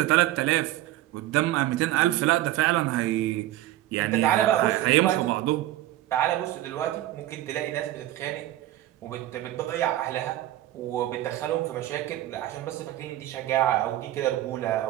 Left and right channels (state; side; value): quieter; left; 14.7 dB